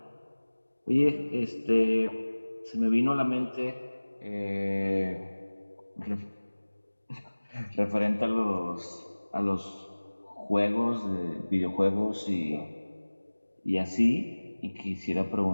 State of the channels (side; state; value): both; inverted; correlation -1.00